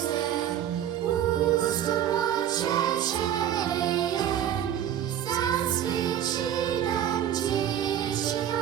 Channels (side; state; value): left; quieter; 10.5 dB